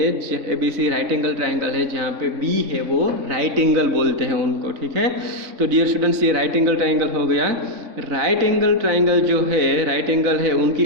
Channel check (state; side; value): late; left; 3.6 ms